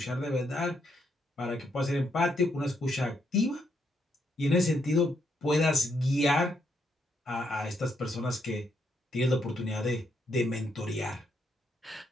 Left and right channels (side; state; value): both; normal; correlation 0.76